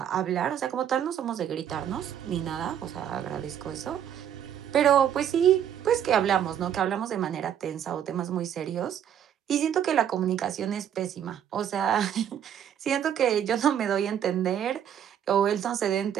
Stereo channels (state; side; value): quieter; left; 9.5 dB